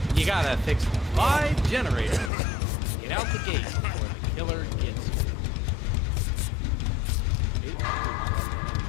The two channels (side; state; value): right; drops out; at 2.3 s